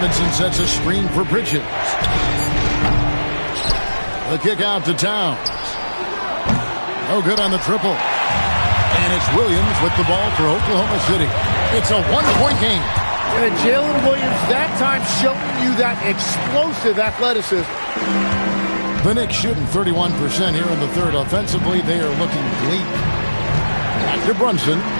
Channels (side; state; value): both; inverted; correlation -1.00